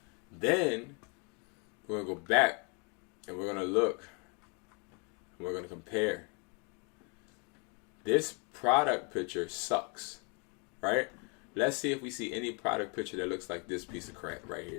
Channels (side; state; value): right; quieter; 34.6 dB